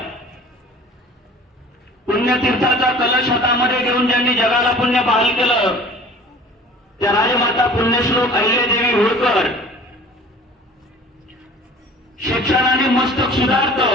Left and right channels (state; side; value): normal; both; correlation 0.45